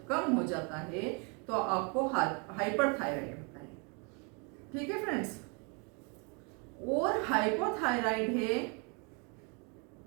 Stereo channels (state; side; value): quieter; left; 34.4 dB